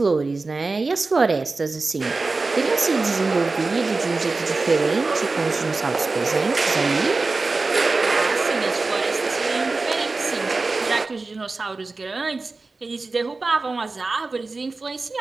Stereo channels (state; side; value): quieter; left; 3.7 dB